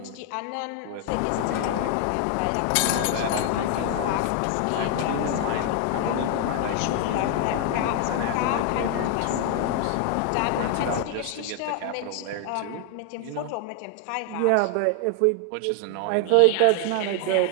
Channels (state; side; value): different; both; correlation 0.00